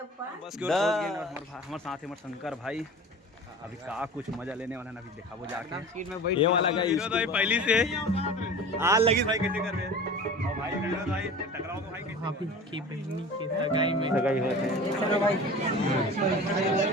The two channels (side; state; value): both; normal; correlation 0.37